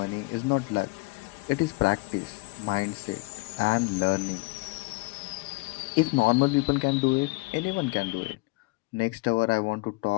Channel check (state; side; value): quieter; right; 24.6 dB